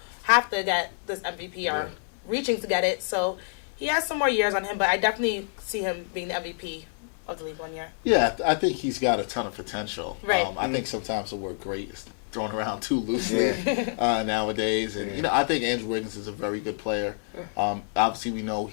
have to get this MVP or reaching to get it. So he has some more years on him, but I definitely see him being the MVP of the league one year. Yeah, I think he's got a ton of potential. Right. I think sometimes the word great thrown around too loosely nowadays. And I think Andrew Wiggins is a very good player. Obviously, we know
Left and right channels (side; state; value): right; silent; 60 dB below the other